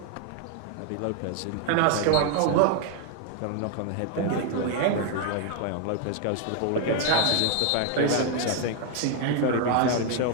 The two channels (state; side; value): different; both; correlation 0.00